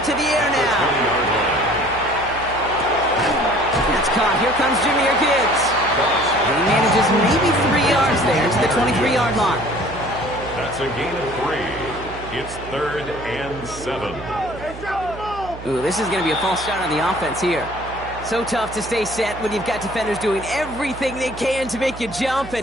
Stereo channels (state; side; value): noise; right; hum, 14 dB below the sound